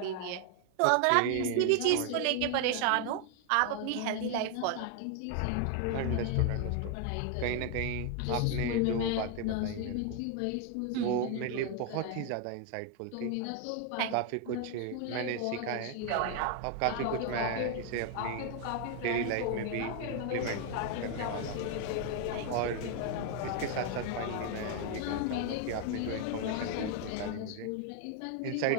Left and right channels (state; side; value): different; both; correlation 0.00